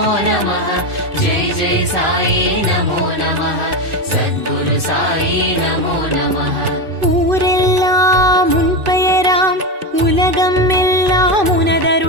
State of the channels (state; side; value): late; left; 2.5 ms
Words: நமः. ஜெய் ஜெய் சாயி நமோ நமः. சத்குரு சாயி நமோ நமः. ஊரெல்லாம் உன் பெயராம், உலகம் எல்லாம்